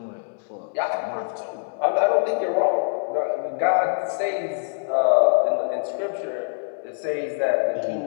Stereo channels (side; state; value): right; silent; digital silence